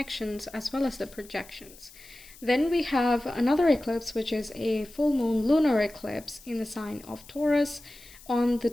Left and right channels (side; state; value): left; noise; hiss, 21 dB below the sound